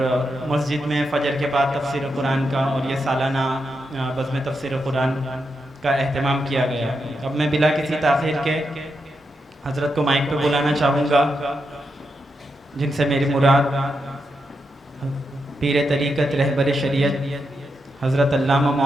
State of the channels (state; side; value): normal; both; correlation 0.84